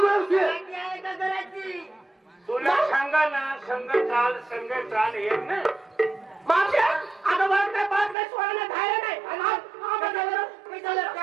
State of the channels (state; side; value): drops out; left; at 8.2 s